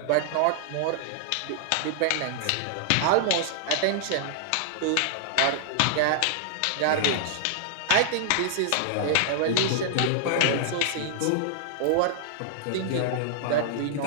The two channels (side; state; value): both; different; correlation -0.01